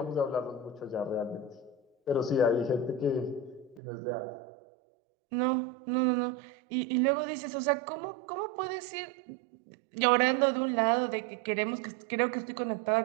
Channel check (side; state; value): left; drops out; at 3.8 s